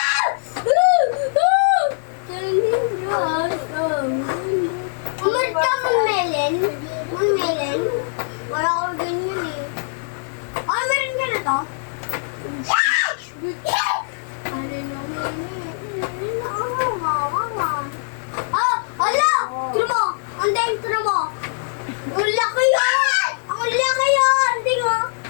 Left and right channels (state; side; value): silent; right; digital silence